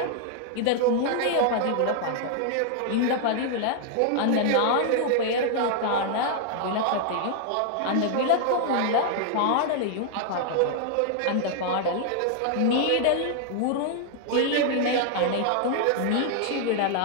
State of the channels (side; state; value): both; different; correlation 0.00